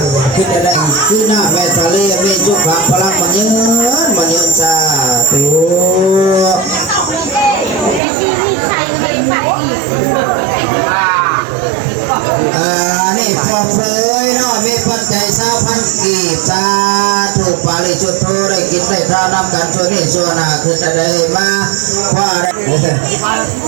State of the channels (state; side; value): drops out; left; at 8.0 s